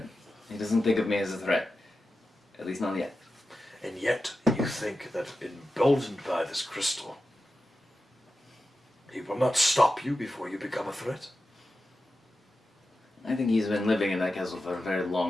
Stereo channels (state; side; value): normal; both; correlation 0.91